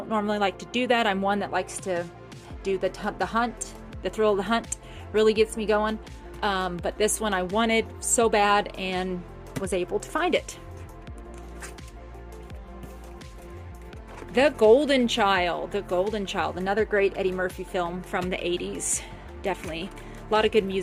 normally like to do that. I'm one that likes to do the hunt. The thrill of the hunt really gets me going. But this one I wanted so bad and was able to find it. The Golden Child. The Golden Child. Another great Eddie Murphy film from the 80s. Definitely. A lot of good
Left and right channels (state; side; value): identical; both; correlation 1.00